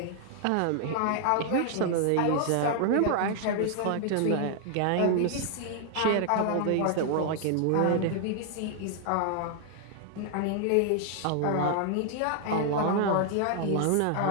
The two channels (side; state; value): both; different; correlation 0.00